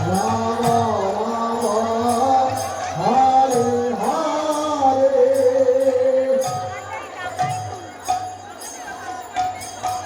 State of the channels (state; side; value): identical; both; correlation 1.00